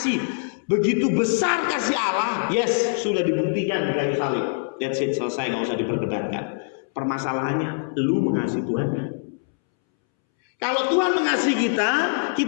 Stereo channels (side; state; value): right; silent; 63 dB below the other